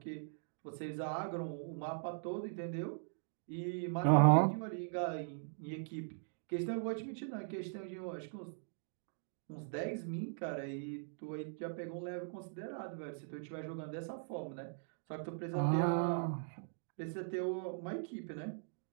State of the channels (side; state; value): left; silent; digital silence